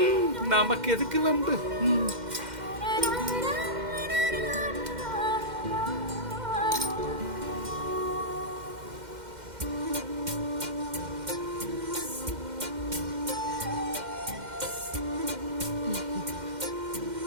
நமக்கு எதுக்கு வம்பு?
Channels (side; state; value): left; late; 2.1 ms